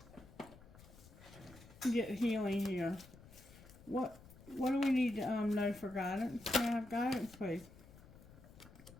get healing here. What do we need to know for guidance? Can I have guidance, please?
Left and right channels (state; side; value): noise; left; rumble, 20 dB below the sound